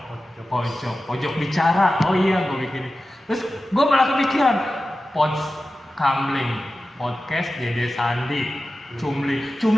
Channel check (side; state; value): both; normal; correlation 0.94